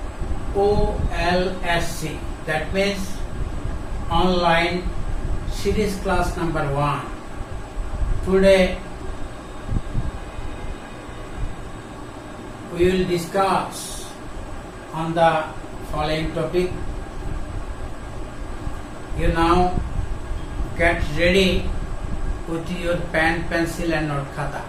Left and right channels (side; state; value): both; identical; correlation 1.00